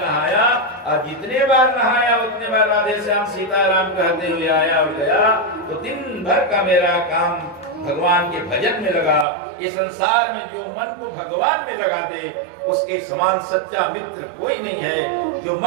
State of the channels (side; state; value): left; drops out; at 9.2 s